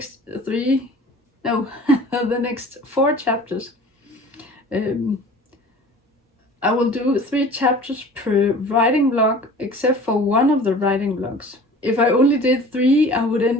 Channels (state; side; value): normal; both; correlation 0.44